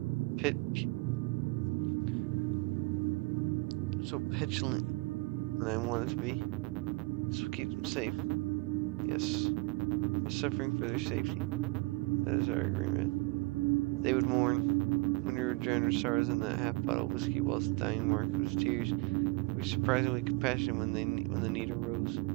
so petulant than I wanted to be. This will keep them safe. Yes, we're suffering for their safety. That is our agreement. They would mourn when we would drown our sorrows in that half bottle of whiskey whilst dying Mark was tears. We were surprisingly compassionate when the need arose.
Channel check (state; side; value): quieter; left; 25.8 dB